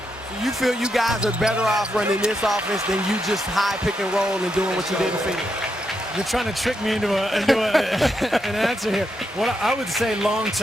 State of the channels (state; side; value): normal; both; correlation 0.82